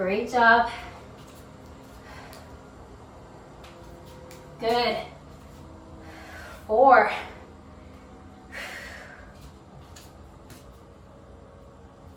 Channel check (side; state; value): both; identical; correlation 1.00